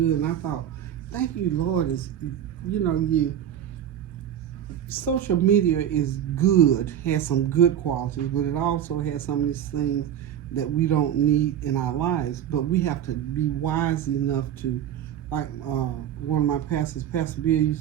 And I thought, thank you, Lord, social media is good, has some good qualities, but it also has some of these things that we don't need in our lives. But we have to be wise enough to, like one of my pastors, Pastor Bill, used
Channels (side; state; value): left; quieter; 10.1 dB